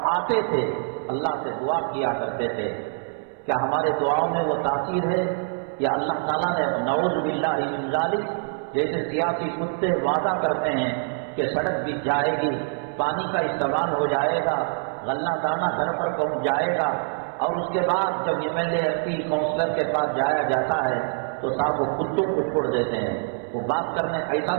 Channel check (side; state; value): left; silent; 62 dB below the other